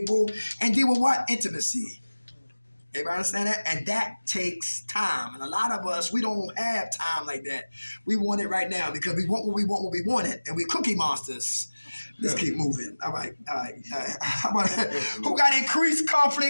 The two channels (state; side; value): inverted; both; correlation -1.00